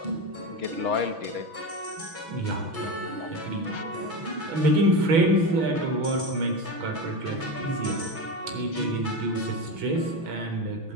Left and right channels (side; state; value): left; late; 6.1 ms